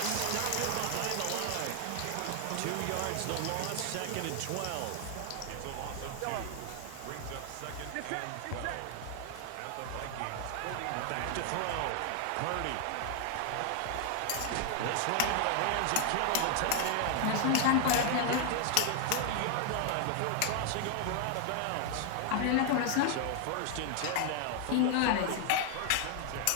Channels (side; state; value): both; different; correlation 0.00